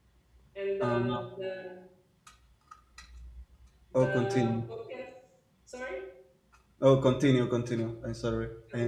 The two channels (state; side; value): identical; both; correlation 1.00